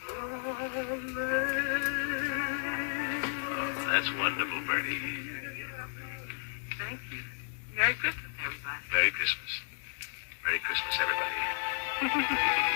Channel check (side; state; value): right; silent; digital silence